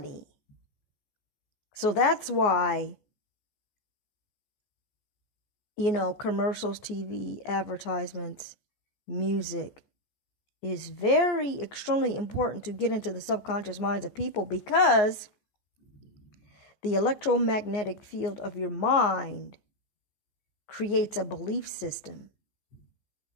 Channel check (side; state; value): right; late; 14 ms